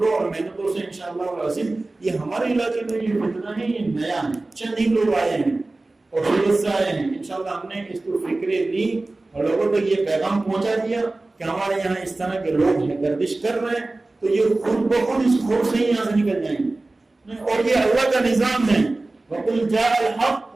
اور محنتوں سے انشاءاللہ العظیم یہ ہمارے علاقے میں یہ فتنہ ہے, یہ نیا ہے, چند ہی لوگ آئے ہیں اور سورت سے آئے ہیں. انشاءاللہ ہم نے اس کو فکریں لی اور لوگوں تک یہ پیغام پہنچا دیا کہ ہمارے یہاں اس طرح کے لوگ ہیں گردش کر رہے ہیں, تو یہ خود بخود اس خوف سے ہی یہاں سے نکل جائیں گے. اور یہ اللہ کا نظام ہے, وَقُلْ جَاءَ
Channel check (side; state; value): left; quieter; 3.1 dB